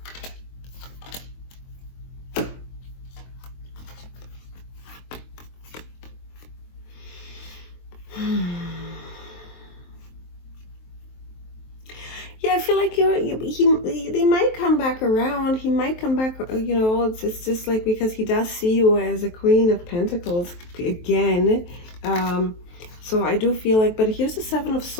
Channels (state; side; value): late; right; 23 ms